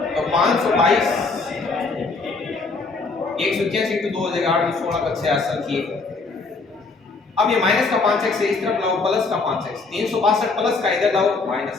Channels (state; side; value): quieter; right; 4.0 dB